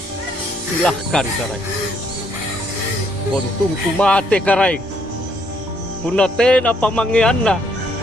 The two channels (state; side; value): normal; both; correlation 0.69